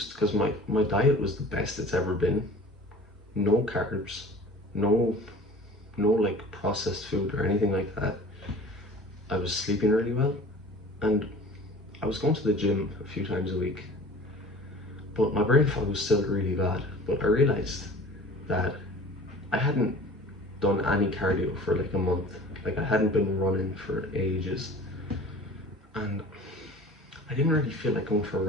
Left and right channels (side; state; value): both; normal; correlation 0.44